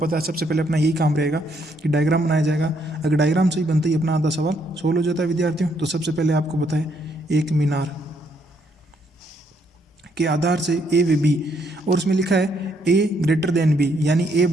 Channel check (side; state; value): both; normal; correlation 0.72